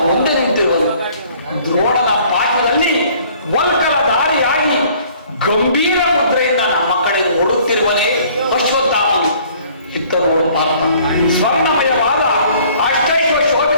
ಮುಂದೆ ನಿಂತಿರುವನು. ದ್ರೋಣನ ಪಾಠದಲ್ಲಿ ವಲ್ಕಲ ದಾರಿಯಾಗಿ ಗಂಭೀರ ಮುದ್ರೆಯಿಂದ ನಮ್ಮ ಕಡೆ ನೋಡುತ್ತಿರುವನೇ ಅಶ್ವತ್ಥಾಮನು. ಇತ್ತರು ಪಾರ್ಥ, ಸ್ವರ್ಣಮಯವಾದ ಅಷ್ಟೈಶ್ವರ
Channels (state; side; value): inverted; both; correlation -0.56